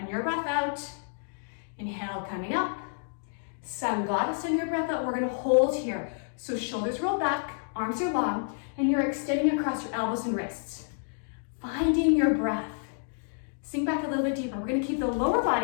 your breath out. Inhale, coming up. Sun goddess in your breath out. We're gonna hold here. So shoulders roll back, arms are long, and you're extending across your elbows and wrists. Finding your breath. Sink back a little bit deeper. We're gonna keep the lower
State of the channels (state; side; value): silent; right; digital silence